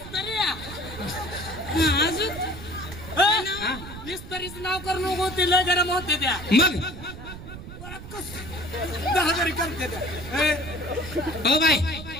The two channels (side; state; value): right; noise; rumble, 12 dB below the sound